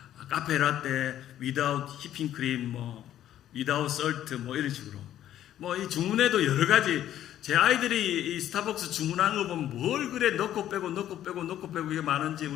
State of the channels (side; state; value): right; quieter; 11.8 dB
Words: 카페 라떼 without whipping cream without salt 이런 식으로 이 주문에도 여러 가지 제 아이들이 이 스타벅스 주문하는 거 보면 뭘 그래 넣고 빼고 이게 많은지